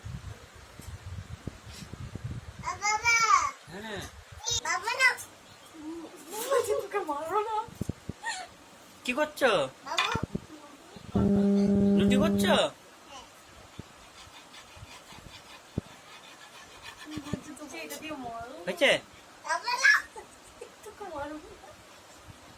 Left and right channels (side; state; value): both; identical; correlation 1.00